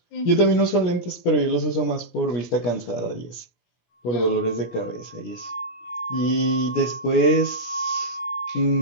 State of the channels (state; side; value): late; right; 17 ms